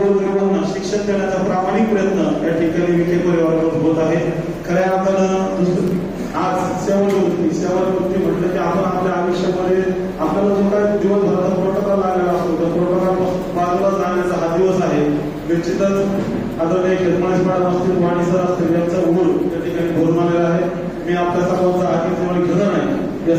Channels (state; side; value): identical; both; correlation 1.00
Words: शिक्षण देण्याचा प्रामाणिक प्रयत्न या ठिकाणी विखे परिवाराकडून होत आहे. खऱ्या अर्थानं आज सेवानिवृत्ती म्हटलं की आपण आपल्या आयुष्यामध्ये आपल्याला जो काय दिवसभराचा प्रोटोकॉल लागलेला असतो त्या प्रोटोकॉल बाजूला जाण्याचा हा दिवस आहे. निश्चितच आदरणीय खेतमाळी मॅडम असतील, वाणी सर असतील यांचा उघड त्या ठिकाणी भरून आलेला आहे. मी आपल्या सर्वांचा आधीच घेणार नाही.